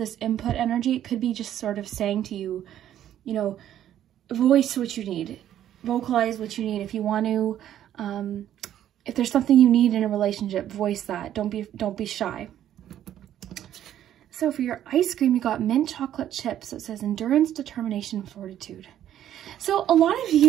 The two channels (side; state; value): left; quieter; 11.3 dB